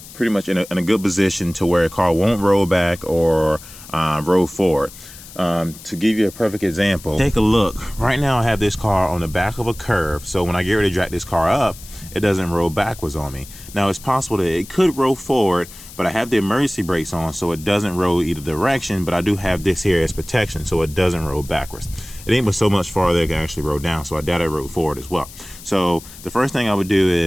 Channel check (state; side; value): noise; left; hiss, 17 dB below the sound